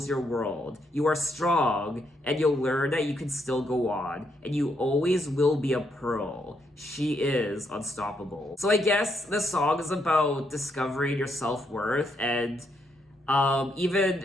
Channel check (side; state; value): both; normal; correlation 0.77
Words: your world. You are strong, and you'll learn that you can still go on, and you always will be a pearl. She is unstoppable. So I guess the song is about discovering your self-worth, and even